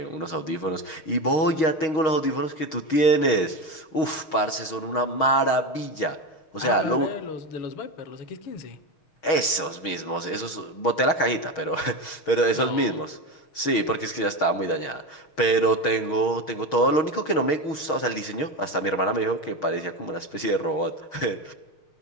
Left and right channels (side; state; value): right; late; 6.3 ms